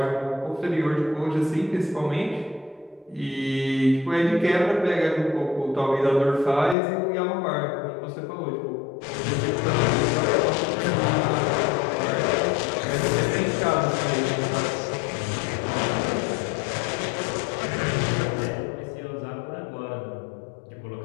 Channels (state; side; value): drops out; right; at 6.8 s